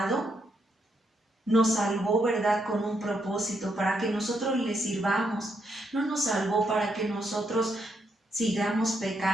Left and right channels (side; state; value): both; normal; correlation 0.78